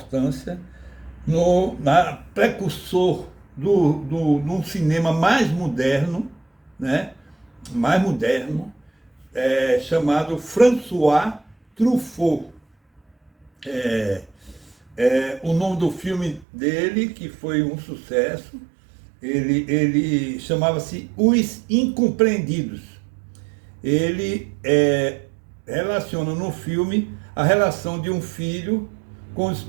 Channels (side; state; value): left; drops out; at 16.4 s